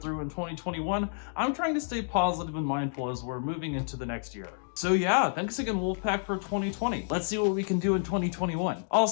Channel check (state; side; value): silent; right; digital silence